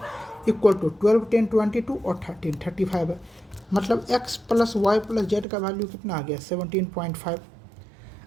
इक्वल टू 12 10 22 और 13 35 है। मतलब x plus Y plus Z का वैल्यू कितना आ गया, 17.5।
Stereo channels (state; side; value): drops out; left; at 5.5 s